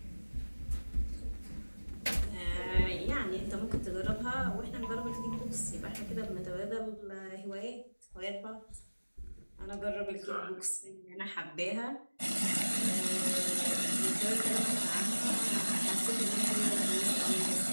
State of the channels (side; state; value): both; inverted; correlation -1.00